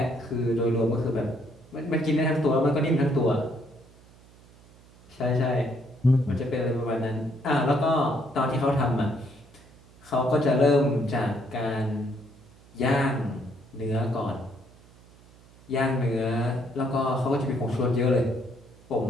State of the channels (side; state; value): right; noise; hum, 25 dB below the sound